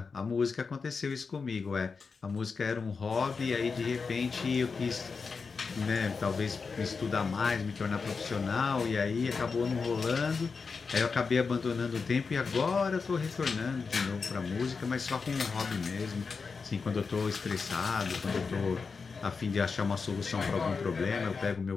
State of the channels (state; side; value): quieter; right; 5.0 dB